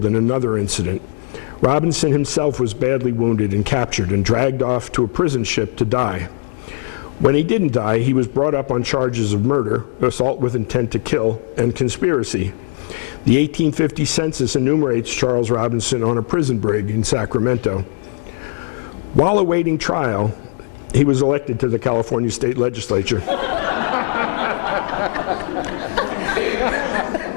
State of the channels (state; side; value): silent; right; digital silence